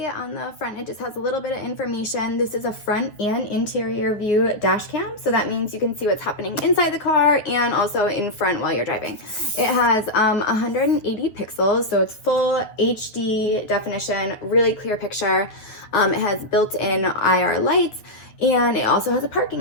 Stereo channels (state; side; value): late; right; 9.6 ms